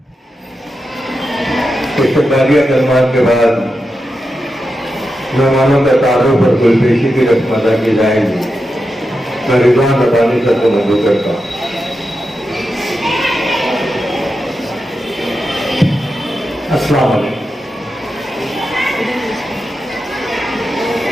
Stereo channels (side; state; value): both; normal; correlation 0.89